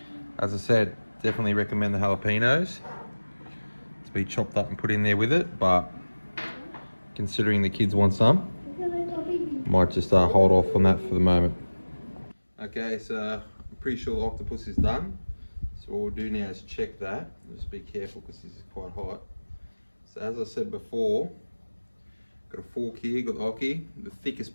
As I said, definitely recommend the jalapenos to be chopped up and put in there with it, but considering the kids want some, might just hold off on that for the moment. Okay, so I'm pretty sure the octopus is done. So what we'll do now is check that. Just be careful because this is quite hot. So as I said before, got a fork here, got the gnocchi, the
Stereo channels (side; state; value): both; inverted; correlation -1.00